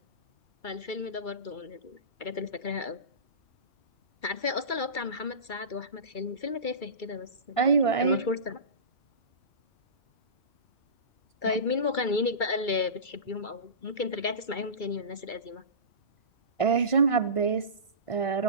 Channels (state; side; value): late; right; 2.3 ms